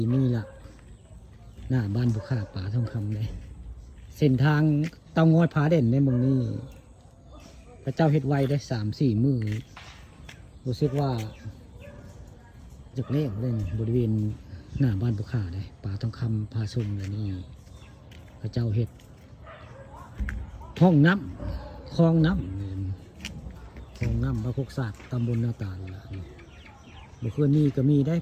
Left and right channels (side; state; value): both; identical; correlation 1.00